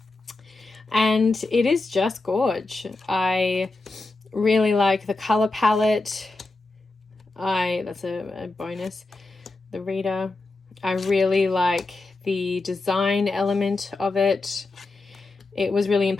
And it is just gorge. I really like the color palette. That's a bonus. The reader. I really like the design element of it. It was really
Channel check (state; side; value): quieter; right; 3.3 dB